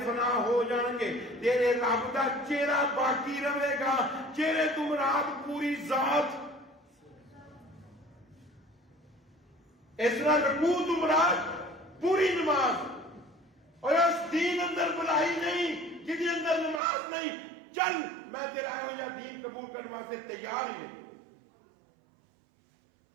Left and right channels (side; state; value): left; drops out; at 16.8 s